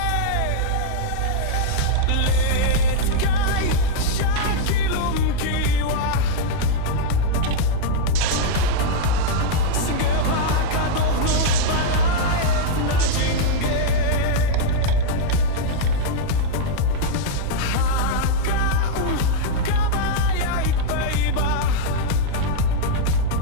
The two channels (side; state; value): both; different; correlation -0.01